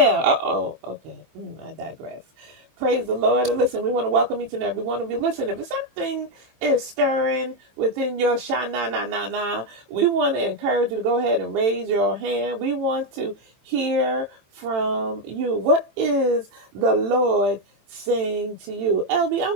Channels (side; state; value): left; late; 15 ms